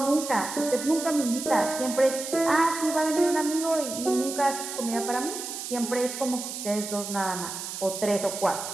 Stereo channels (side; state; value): right; noise; hiss, 7 dB below the sound